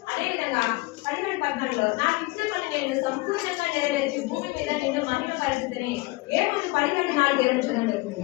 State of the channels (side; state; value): right; quieter; 22.6 dB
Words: అదే విధంగా 11:14 నాకు ఇచ్చిన పని నేను సంపూర్ణంగా నెరవేర్చి భూమి మీద నిన్ను మహిమ పరిస్థితిని. ఏమని 12:4